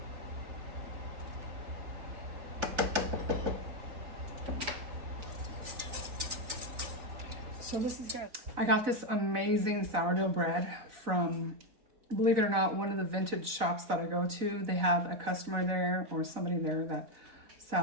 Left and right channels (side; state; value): left; late; 4.0 ms